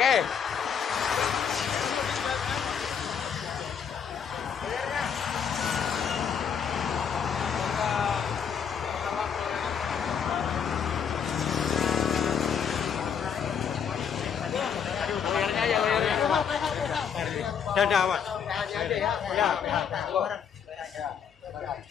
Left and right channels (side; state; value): right; quieter; 7.4 dB